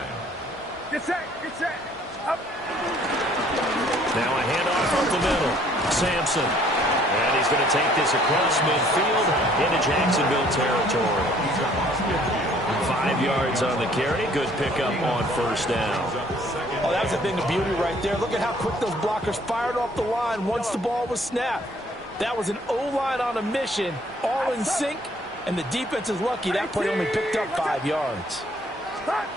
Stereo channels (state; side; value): normal; both; correlation 0.60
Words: Get set, up. Now a handoff up the middle. Sampson. And he's going to take this across midfield into Jacksonville territory. 5 yards on the carry. Good pickup on 1st down. Oh, that was a thing of beauty right there. Look at how quick those blockers fired off the line once the ball was snapped. That was an O-line on a mission, all in sync, and the defense is lucky that play only picked up 5 yards.